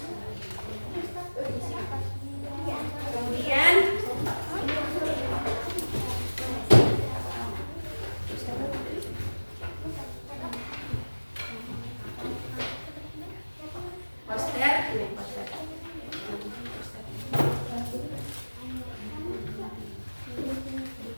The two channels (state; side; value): inverted; both; correlation -1.00